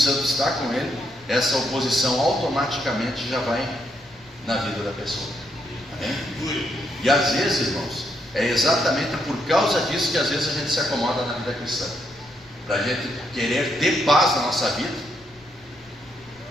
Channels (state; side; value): noise; left; rumble, 28 dB below the sound